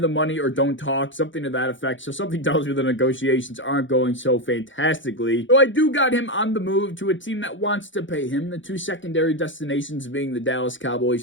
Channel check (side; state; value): right; late; 0.56 ms